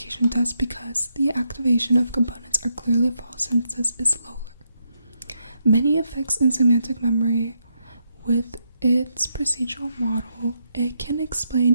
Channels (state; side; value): inverted; both; correlation -0.80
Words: test because the activation of components are clearly false sentences is lower. Many effects in semantic memory. With its procedural model, it can